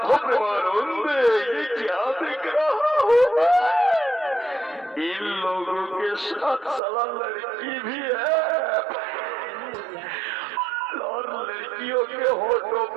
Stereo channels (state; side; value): drops out; left; at 6.8 s